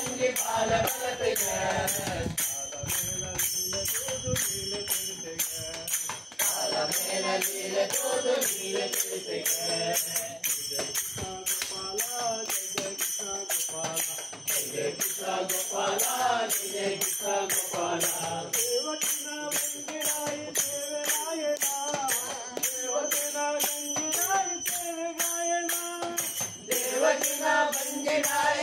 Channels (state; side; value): identical; both; correlation 1.00